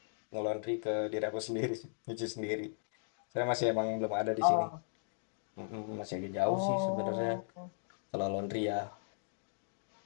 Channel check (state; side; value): silent; right; digital silence